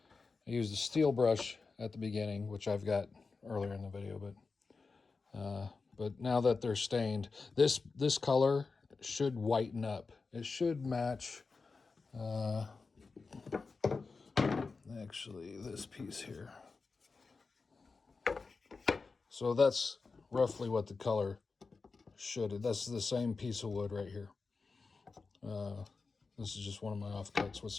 I used a steel brush at the beginning, which I've got earlier in the video, but now that they're stained, this color should whiten up. It should match actually this piece here. So that's roughly what the color should. That's the same piece of wood right here. This is just one of my offcuts with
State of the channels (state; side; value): quieter; right; 4.3 dB